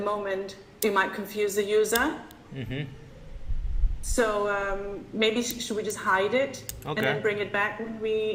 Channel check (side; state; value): both; identical; correlation 1.00